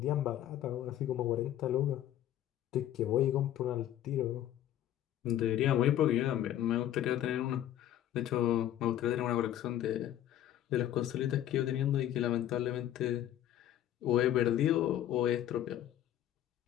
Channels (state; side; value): quieter; right; 12.0 dB